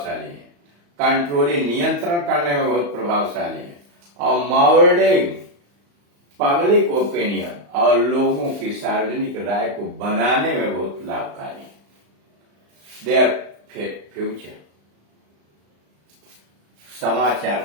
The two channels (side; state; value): left; late; 35 ms